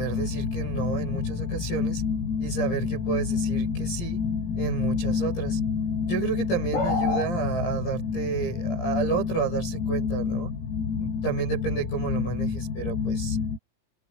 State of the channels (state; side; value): late; right; 17 ms